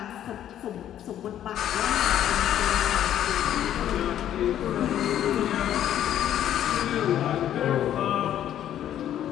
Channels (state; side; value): quieter; right; 11.1 dB